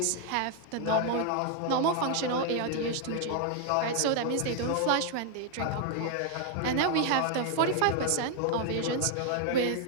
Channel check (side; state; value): both; different; correlation 0.00